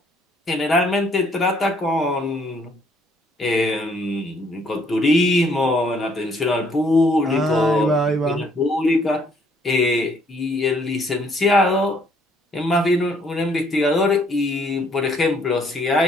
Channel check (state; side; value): normal; both; correlation 0.65